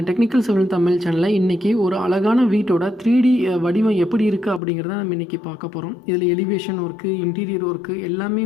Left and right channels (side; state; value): right; drops out; at 4.6 s